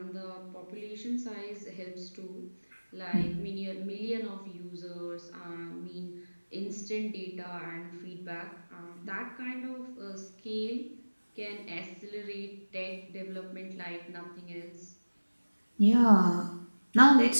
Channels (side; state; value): both; inverted; correlation -1.00